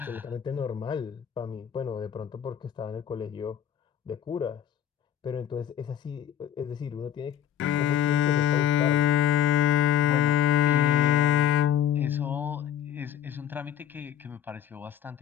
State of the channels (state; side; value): quieter; right; 10.1 dB